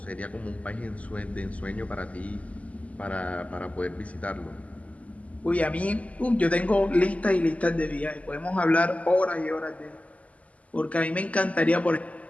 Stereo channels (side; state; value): right; late; 0.069 ms